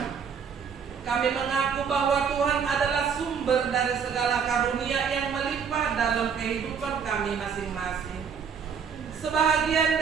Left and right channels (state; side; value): quieter; left; 6.8 dB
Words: Kami mengaku bahwa Tuhan adalah sumber dari segala karunia yang melimpah dalam kehidupan kami masing-masing. Sebahagian